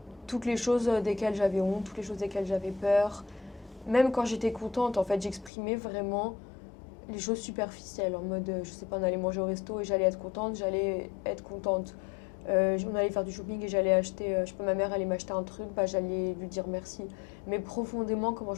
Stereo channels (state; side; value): drops out; right; at 5.5 s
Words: Toutes les choses desquelles j'avais honte, toutes les choses desquelles j'avais peur. Même quand j'étais contente, en fait, j'exprimais vraiment les choses superficielles, en mode, je sais pas, on allait manger au resto et j'allais être contente, on allait faire du shopping et j'allais acheter, je sais pas, ma mère allait m'acheter un truc, bah j'allais lui dire merci. Mais profondément, comment